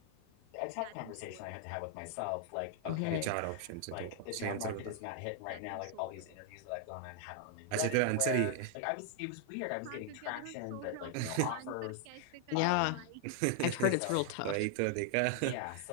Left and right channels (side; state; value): both; different; correlation 0.00